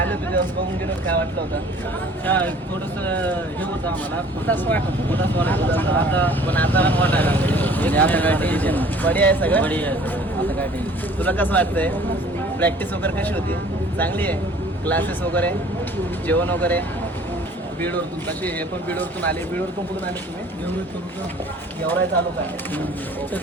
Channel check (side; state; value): both; normal; correlation 0.51